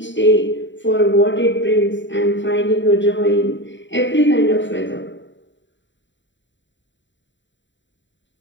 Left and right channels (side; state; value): right; late; 0.54 ms